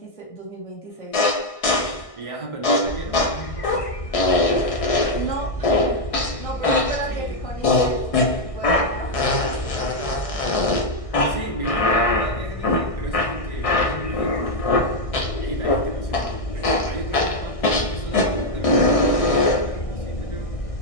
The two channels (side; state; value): right; late; 1.6 ms